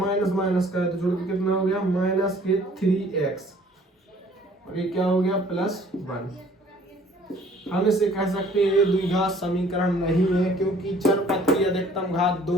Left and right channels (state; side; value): normal; both; correlation 0.55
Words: माइनस का है तो जुड़ के कितना हो गया, माइनस के 3x, और ये क्या हो गया +1। हम इसे कह सकते हैं ये द्विघात समीकरण नहीं है, क्योंकि चरपथ की अधिकतम घात